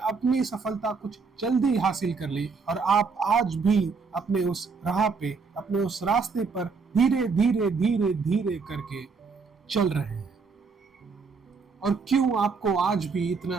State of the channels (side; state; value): left; quieter; 4.9 dB